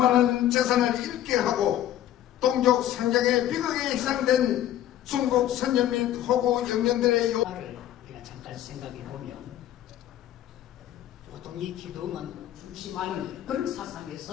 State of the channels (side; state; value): right; quieter; 12.1 dB